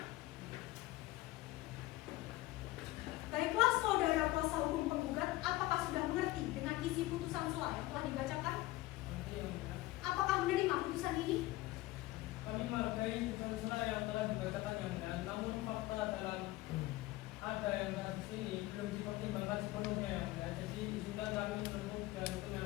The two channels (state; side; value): quieter; right; 18.2 dB